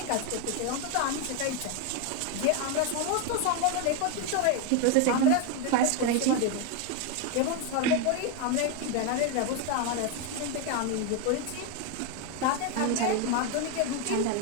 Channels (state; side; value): different; both; correlation 0.01